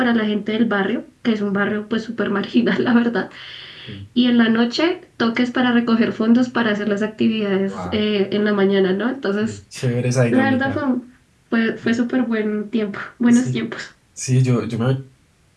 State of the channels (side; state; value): both; identical; correlation 1.00